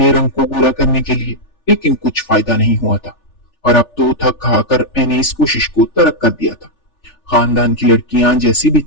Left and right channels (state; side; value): late; right; 3.4 ms